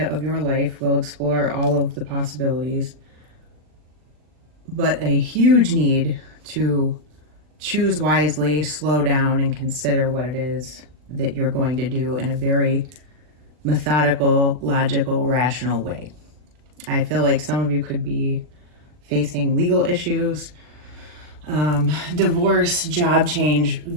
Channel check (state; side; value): late; left; 40 ms